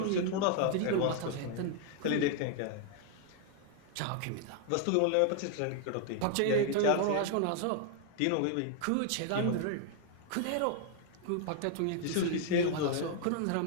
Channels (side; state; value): both; different; correlation 0.00